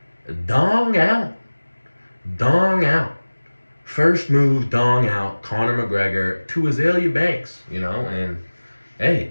Dong out. Dong out. First move, dong out, Conor McGregor to Azalea Banks, and hey,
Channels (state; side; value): inverted; both; correlation -1.00